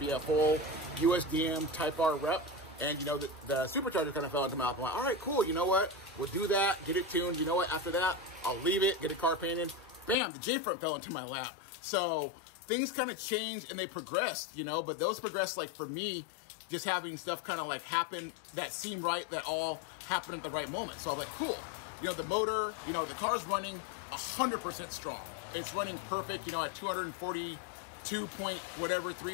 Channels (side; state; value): right; drops out; at 10.2 s